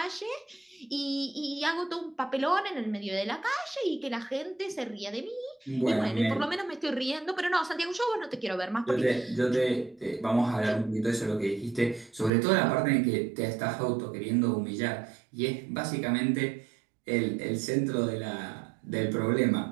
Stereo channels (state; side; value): drops out; left; at 12.3 s